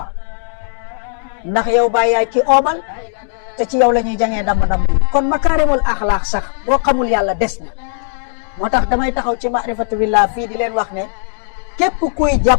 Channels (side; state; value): right; silent; digital silence